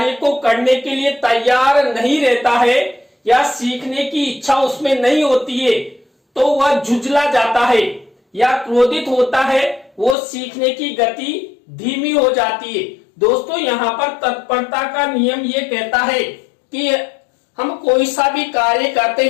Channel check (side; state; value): right; drops out; at 10.2 s